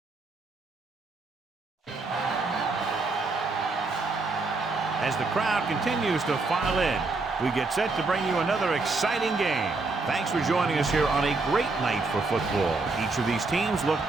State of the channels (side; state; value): left; quieter; 3.7 dB